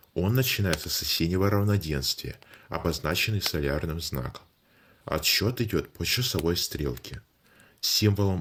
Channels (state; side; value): identical; both; correlation 1.00